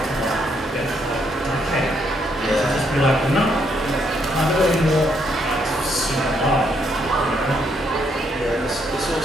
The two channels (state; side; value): normal; both; correlation 0.73